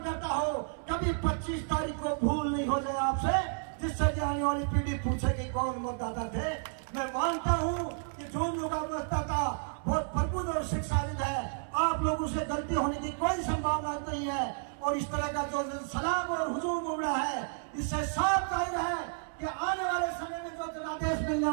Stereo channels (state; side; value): silent; left; 57 dB below the other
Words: करता हूँ, कभी 25 तारीख को भूल नहीं हो जाए आपसे, जिससे कि आने वाली पीढ़ी पूछेगी कौन मतदाता थे। मैं मानता हूँ कि झुंझुनू का मतदाता बहुत प्रबुद्ध और शिक्षाविद है। आप लोगों से गलती होने की कोई संभावना नहीं है और इस तरह का जो सलाम और हुजूम उमड़ा है, इससे साफ जाहिर है कि आने वाले समय में जो जनादेश मिलने